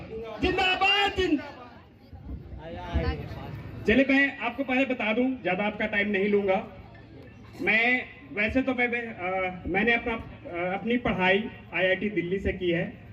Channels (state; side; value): identical; both; correlation 1.00